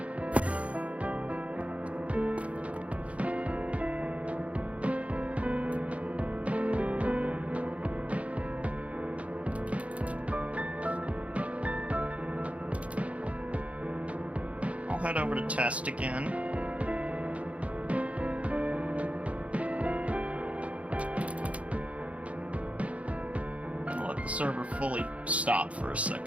I'll head over to test again. Server fully stop for a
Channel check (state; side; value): late; left; 0.064 ms